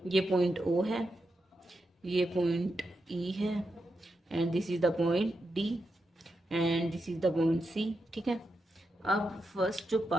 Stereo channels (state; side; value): normal; both; correlation 0.86